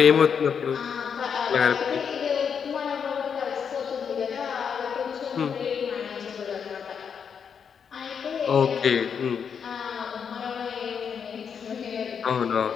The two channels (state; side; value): quieter; right; 7.0 dB